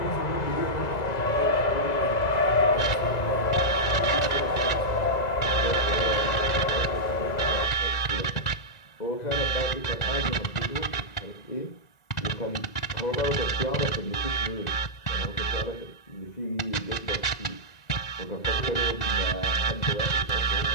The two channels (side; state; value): right; late; 2.0 ms